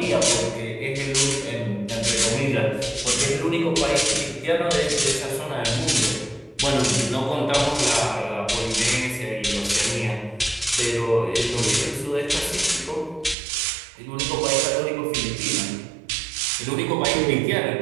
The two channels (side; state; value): left; drops out; at 13.4 s